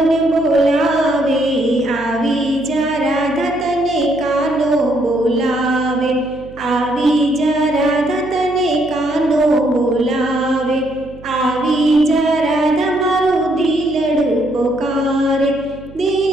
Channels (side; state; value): right; noise; hum, 19 dB below the sound